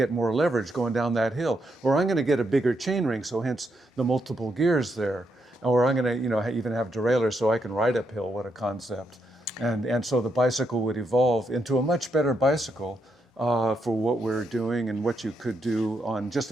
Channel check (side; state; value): both; normal; correlation 0.80